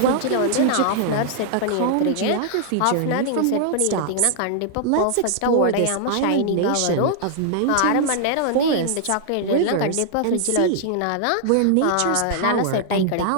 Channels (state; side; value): different; both; correlation -0.01